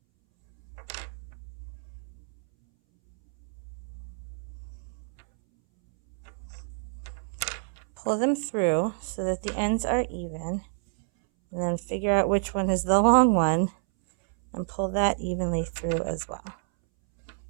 Pull them through so that the ends are even, and then figure out which one is the long one and pull that evenly through as well,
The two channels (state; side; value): silent; left; 59 dB below the other